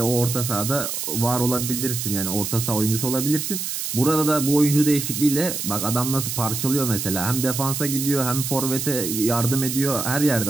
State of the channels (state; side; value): noise; right; hiss, 4 dB below the sound